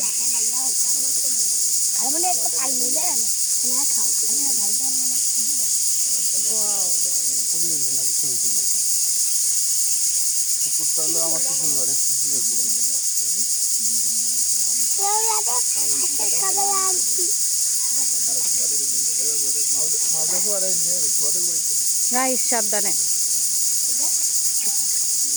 না আর মানে একটা তাল মিলে না খাও না খাও তো না ওয়াও, পরিবেশ নষ্ট হয়েছিল। পুকুরটা হলো আমার শ্বশুর বাড়ির শ্বশুরের পুকুর। রাইস সাবধানে।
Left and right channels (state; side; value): noise; left; hiss, 13 dB below the sound